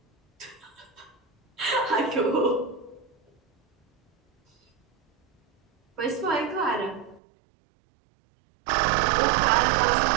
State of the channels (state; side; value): drops out; left; at 7.2 s